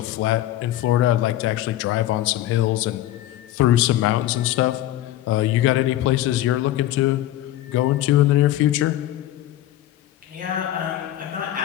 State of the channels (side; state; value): right; quieter; 13.8 dB